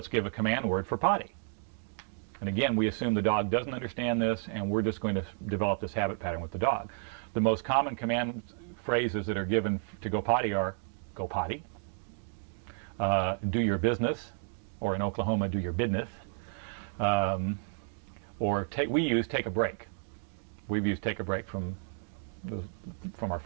give a command word for potty. And again, we assume the dog doesn't understand this, and we're just going to develop this habit pattern with the dog. The most common command phrases that are given to go potty are, go potty, do your business, or in Oklahoma, do your business, or we use take a break. We've used take a break from our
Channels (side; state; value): left; silent; 57 dB below the other